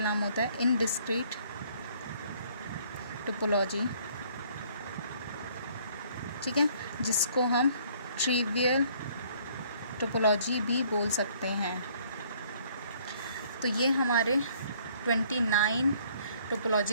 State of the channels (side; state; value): both; inverted; correlation -0.60